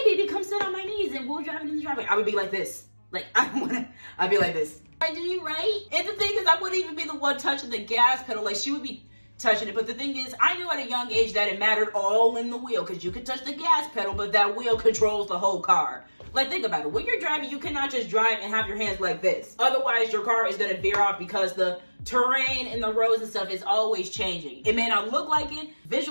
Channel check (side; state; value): both; inverted; correlation -1.00